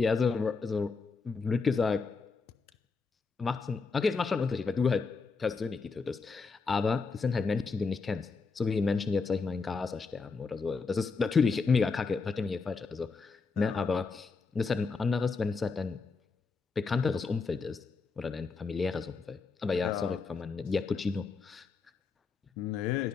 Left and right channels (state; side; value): quieter; right; 4.6 dB